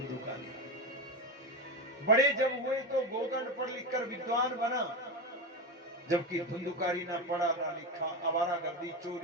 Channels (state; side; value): normal; both; correlation 0.17